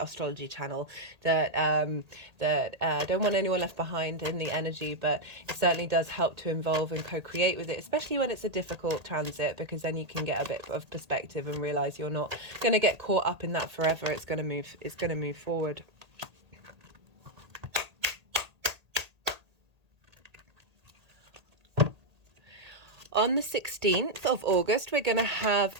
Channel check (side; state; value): left; late; 1.8 ms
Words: channel, that don't want anyone left behind in the energy. But it certainly does help to involve and co-create with it, especially when it's a difficult transit, because then you can get a bit of perspective and realize you're not going to get caught up in that forever. It's going to move forward. On the 16th of August, we're going to have